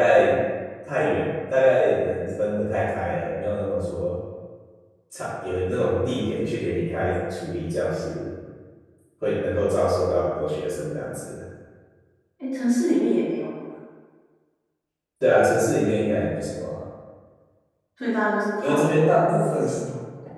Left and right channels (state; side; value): identical; both; correlation 1.00